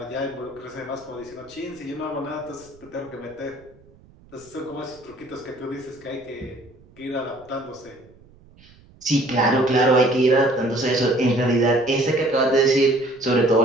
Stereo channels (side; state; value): right; noise; rumble, 27 dB below the sound